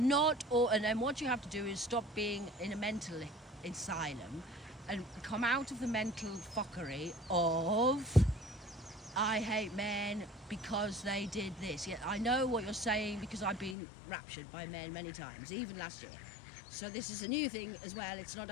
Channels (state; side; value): drops out; right; at 13.8 s